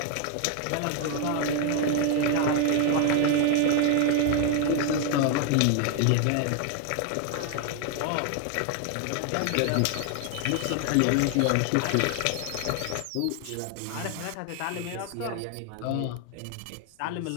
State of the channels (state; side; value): different; both; correlation 0.00